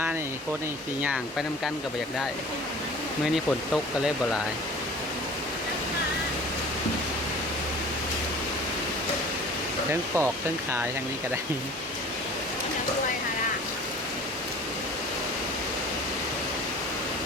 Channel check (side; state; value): both; normal; correlation 0.44